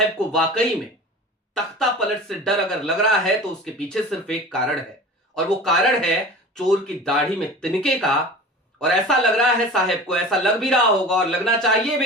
को वाकई में तख्ता पलट से डर अगर लग रहा है तो उसके पीछे सिर्फ एक कारण है, और वो कारण है चोर की दाढ़ी में तिनके का। और ऐसा लग रहा है साहब को, ऐसा लग भी रहा होगा और लगना चाहिए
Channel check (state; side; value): normal; both; correlation 0.37